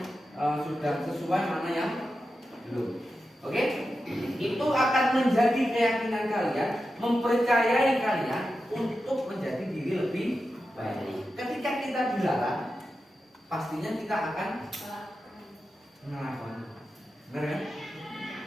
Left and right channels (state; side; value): normal; both; correlation 0.90